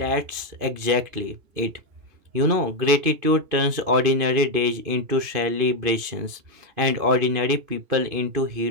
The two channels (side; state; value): left; late; 2.5 ms